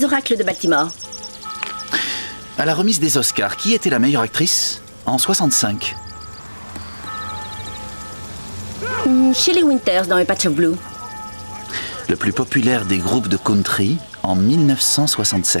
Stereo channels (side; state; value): both; inverted; correlation -1.00